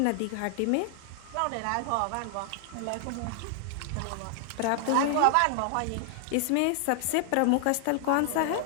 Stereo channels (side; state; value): both; different; correlation 0.00